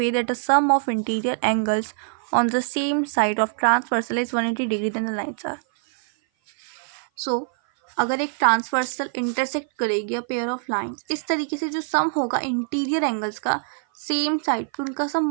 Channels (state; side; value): silent; left; 56 dB below the other